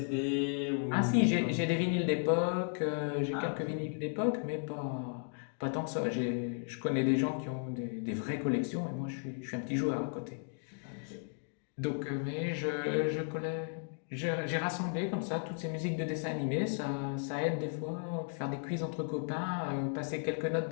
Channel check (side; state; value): right; silent; 55 dB below the other